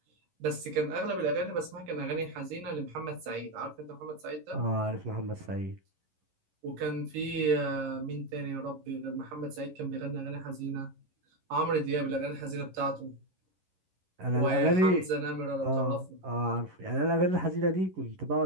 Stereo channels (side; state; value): left; late; 11 ms